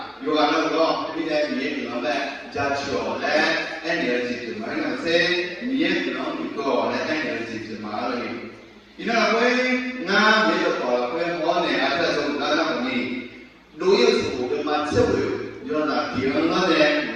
有完了对不对？米烟可能在加强嘞，安点是什么？那些米烟可能比较嘞，安点是什么了？因为我那米就搞了，我呢啊，这种那么呢，路有时候跟嘛吃不了。就那地方那的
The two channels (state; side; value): identical; both; correlation 1.00